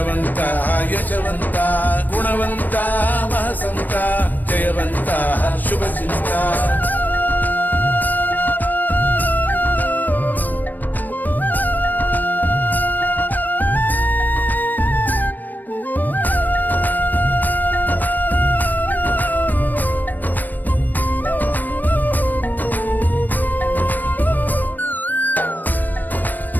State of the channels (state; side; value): late; right; 0.088 ms